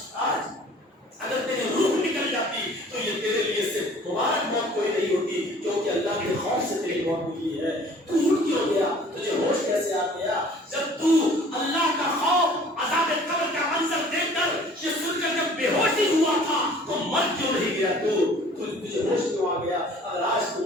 آج اگر تیری روح نکل جاتی تو یہ تیرے لیے صرف مبارک موت کوئی نہیں ہوتی, کیونکہ اللہ کے خوف سے تیری موت ملی ہے. تو اٹھ کیوں گیا؟ تجھے ہوش کیسے آ گیا؟ جب تو اللہ کا خوف عذاب قبر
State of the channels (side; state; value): both; normal; correlation 0.51